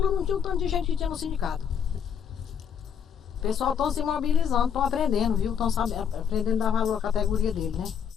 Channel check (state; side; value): quieter; right; 7.8 dB